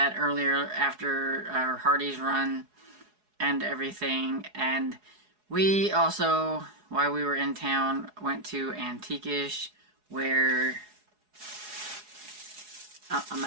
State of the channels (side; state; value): left; late; 4.8 ms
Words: earlier after our Hardee's run and everything. And we also, while we were in town, went to Antiquish, where I